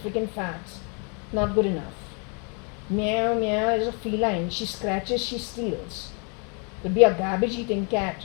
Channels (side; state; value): right; quieter; 37.0 dB